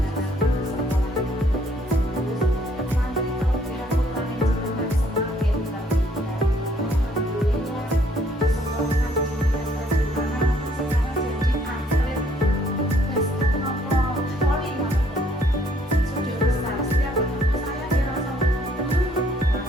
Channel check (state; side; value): normal; both; correlation 0.65